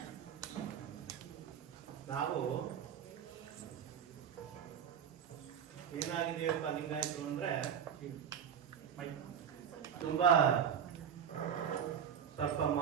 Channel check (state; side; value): quieter; left; 8.1 dB